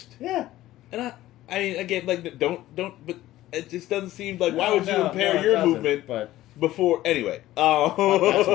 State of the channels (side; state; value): right; quieter; 15.3 dB